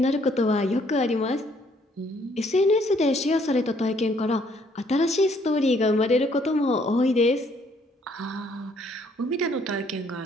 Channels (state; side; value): normal; both; correlation 0.65